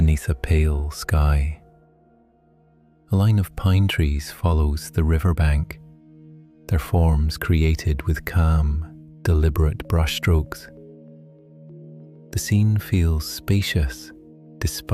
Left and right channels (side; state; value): both; identical; correlation 1.00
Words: a pale sky. A line of pine trees follows the riverbank, their forms created with calm, deliberate brushstrokes. The scene feels spacious